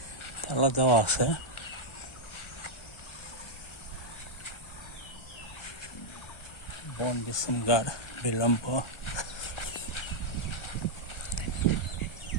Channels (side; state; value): right; late; 1.3 ms